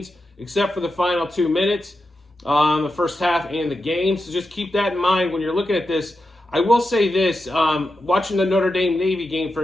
except for the final 2 minutes, the first half and the game. So just keep that in mind when you're looking at this. I will say this, watching the Notre Dame Navy game, for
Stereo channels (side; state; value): both; normal; correlation 0.89